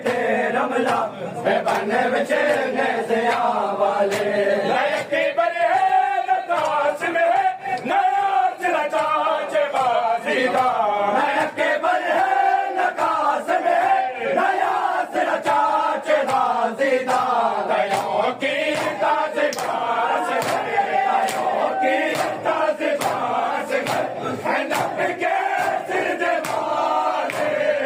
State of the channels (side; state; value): both; identical; correlation 1.00